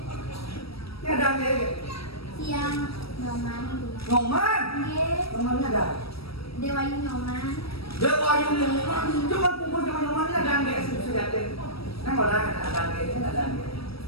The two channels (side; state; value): right; late; 0.76 ms